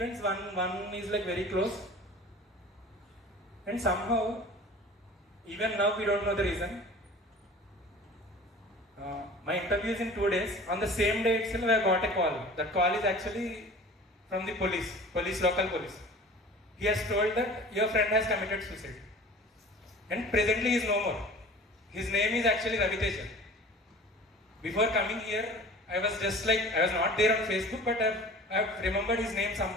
one is like very close. And somehow, even now we don't know the reason. My interview is in 2 days. On the same day itself, I got a call. That call is actually from the local police. He has told that your friend has committed suicide. And presently he is no more. His name is actually Ravi Teja. Before coming here, I was not there on Facebook, but I've remembered his name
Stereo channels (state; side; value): normal; both; correlation 0.42